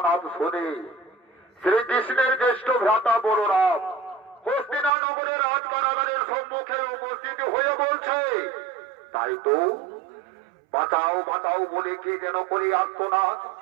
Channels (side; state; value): left; drops out; at 4.9 s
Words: শুনে শ্রীকৃষ্ণের জ্যেষ্ঠ ভ্রাতা বলরাম হস্তিনানগরের রাজকারাগারের সম্মুখে উপস্থিত হয়ে বলছে, তাই তো বাঁচাও বাঁচাও বলে কে যেন করে আত্মনাদ।